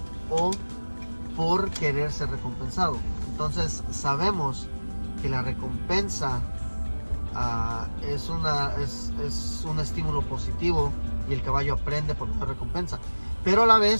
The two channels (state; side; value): inverted; both; correlation -1.00